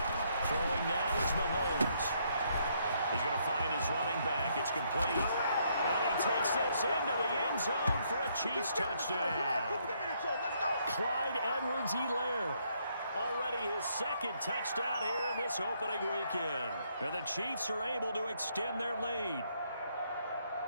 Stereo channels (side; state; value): both; inverted; correlation -0.72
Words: Throwing now is Mahomes. He's going to find his running back. It's complete. And he takes this into the end zone for a Chiefs touchdown. Clyde Edwards-Helaire. Already his second touchdown here in this opening weekend. And the Chiefs are able to extend their lead.